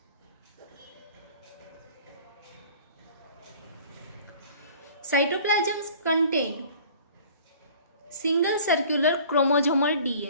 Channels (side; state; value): both; inverted; correlation -0.48